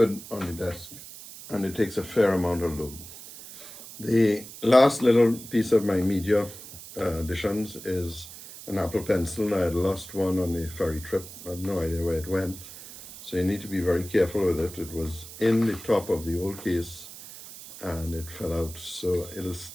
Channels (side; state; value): right; noise; hiss, 15 dB below the sound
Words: on the desk, and it takes a fair amount of load. The last little piece of my media additions is an Apple Pencil. I had lost one on the ferry trip. I have no idea where it went, so you need to be very careful with it. It was in the top of the old case, and it fell out, so it'll